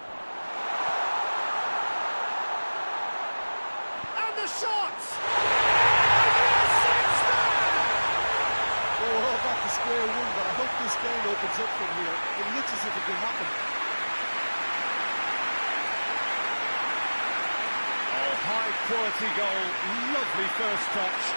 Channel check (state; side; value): inverted; both; correlation -1.00